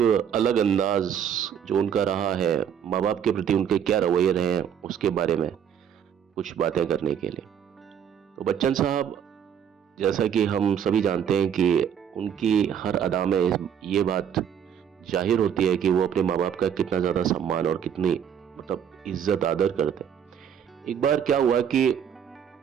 अलग अंदाज जो उनका रहा है, माँ बाप के प्रति उनके क्या रवैये रहे हैं, उसके बारे में कुछ बातें करने के लिए। तो बच्चन साहब, जैसा कि हम सभी जानते हैं कि उनकी हर अदा में ये बात जाहिर होती है कि वो अपने माँ बाप का कितना ज़्यादा सम्मान और कितनी इज्जत आदर करते हैं। एक बार क्या हुआ कि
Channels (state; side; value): quieter; left; 8.6 dB